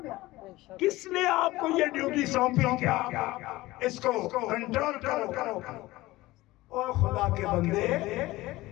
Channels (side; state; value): right; quieter; 18.7 dB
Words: کس نے آپ کو یہ ڈیوٹی سونپی؟ کیا اس کو کنٹرول کرو. اور خدا کے بندے